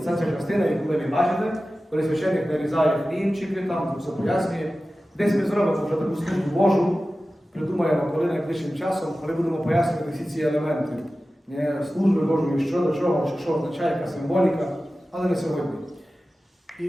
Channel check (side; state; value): both; normal; correlation 0.95